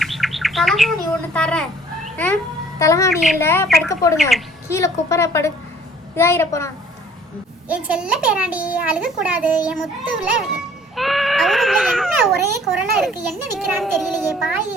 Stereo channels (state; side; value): normal; both; correlation 0.55